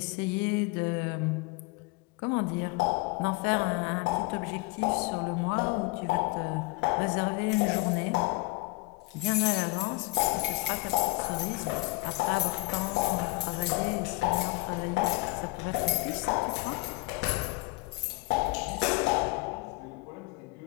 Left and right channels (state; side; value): quieter; right; 24.1 dB